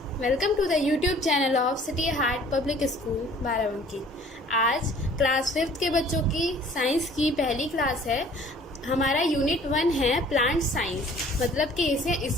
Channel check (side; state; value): both; normal; correlation 0.52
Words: welcome to the YouTube channel of City Heart Public School Barabanki. आज class 5th के बच्चों की science की पहली क्लास है। हमारा यूनिट 1 है प्लांट साइंस, मतलब कि